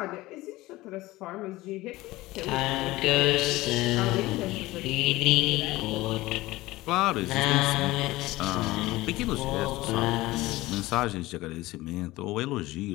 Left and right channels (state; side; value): quieter; right; 18.7 dB